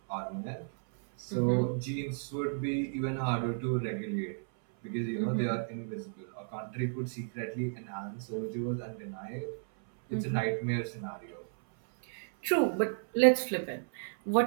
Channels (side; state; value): left; silent; 56 dB below the other